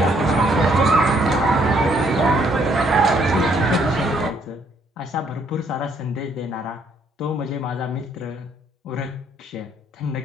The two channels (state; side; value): normal; both; correlation 0.68